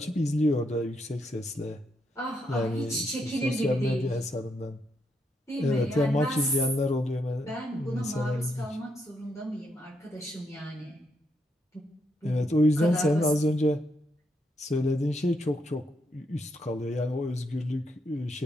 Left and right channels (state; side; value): normal; both; correlation 0.79